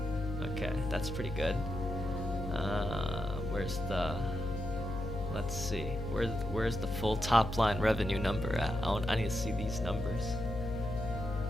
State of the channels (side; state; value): left; noise; hum, 6 dB below the sound